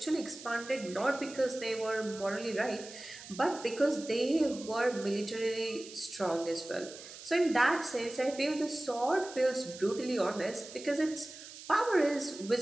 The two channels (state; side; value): noise; right; hiss, 15 dB below the sound